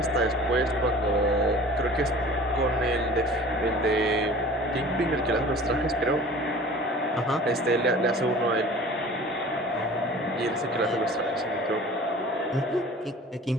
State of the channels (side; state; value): both; normal; correlation 0.44